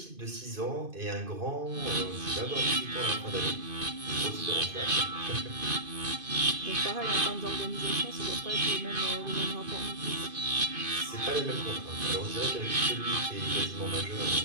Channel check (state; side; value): late; left; 2.5 ms